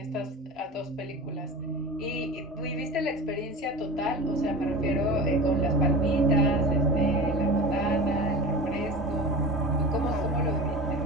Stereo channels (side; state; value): both; normal; correlation 0.33